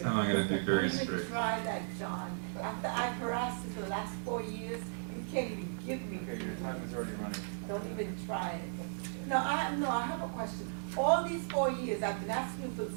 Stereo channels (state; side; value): silent; left; digital silence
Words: time I'm gonna be very Don't even strict. try that, John. After I've harassed you for the last 4 years, you can't even give me. Okay, your time is already running. Don't even try it. No, I have a question. All these 4 years, I've been asking you for the